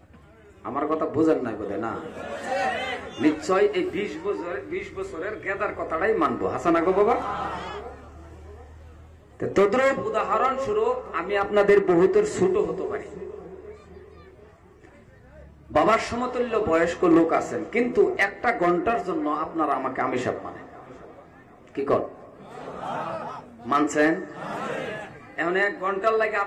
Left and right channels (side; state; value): both; identical; correlation 1.00